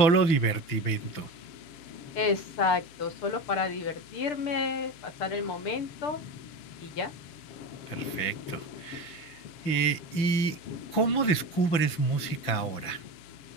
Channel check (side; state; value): right; late; 6.7 ms